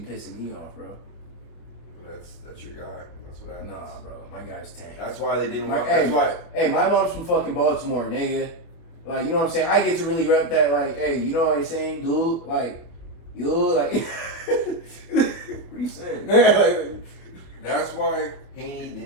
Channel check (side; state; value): right; late; 24 ms